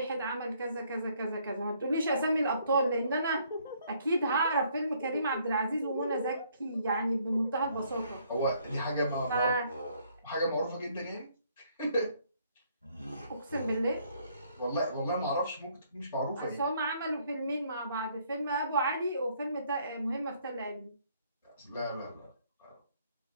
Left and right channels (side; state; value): both; inverted; correlation -0.66